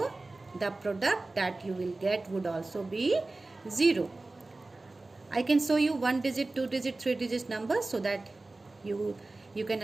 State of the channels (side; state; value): left; quieter; 3.1 dB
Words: the product that you will get would also be 0. I can show you 1-digit, 2-digit, 3-digit numbers so that you can